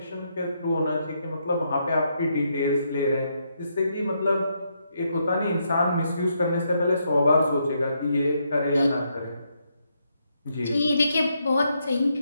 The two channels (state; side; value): inverted; both; correlation -0.78